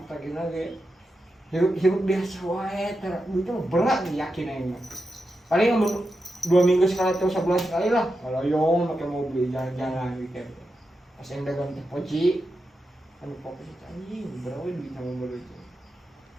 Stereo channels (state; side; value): normal; both; correlation 0.88